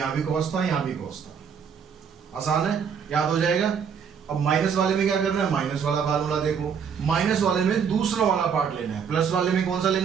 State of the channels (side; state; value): left; quieter; 7.0 dB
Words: भी cos था यहाँ भी cos था। आसान है, याद हो जाएगा। अब माइनस वाले में क्या करना है, माइनस वाला फार्मूला देखो। माइनस वाले में दूसरा वाला पार्ट लेना है, प्लस वाले में कौन सा